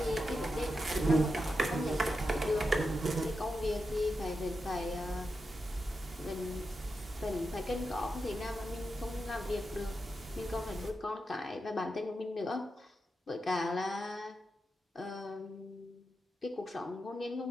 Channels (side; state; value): both; normal; correlation 0.88